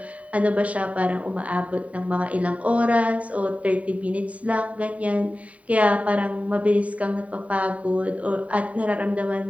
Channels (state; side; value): late; left; 0.067 ms